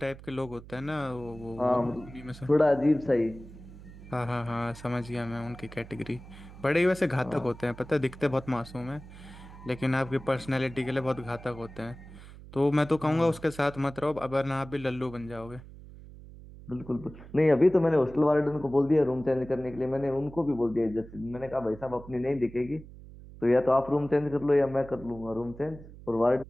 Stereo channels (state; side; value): noise; right; hum, 17 dB below the sound